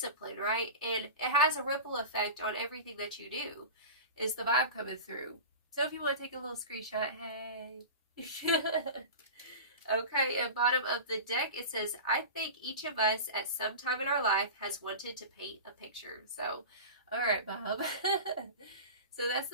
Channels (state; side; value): inverted; both; correlation -0.30